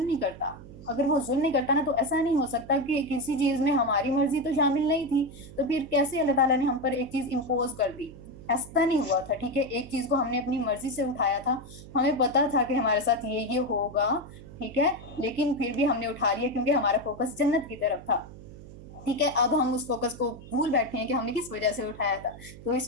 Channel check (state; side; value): noise; right; hum, 16 dB below the sound